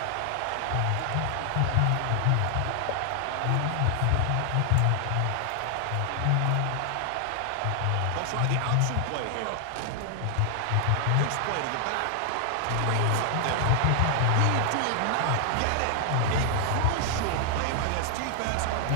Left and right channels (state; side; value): different; both; correlation 0.00